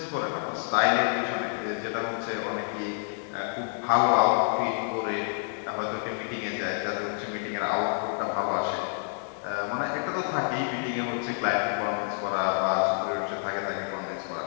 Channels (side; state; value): right; silent; 59 dB below the other